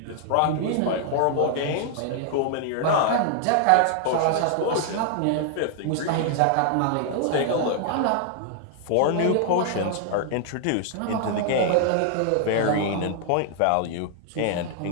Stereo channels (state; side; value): different; both; correlation 0.00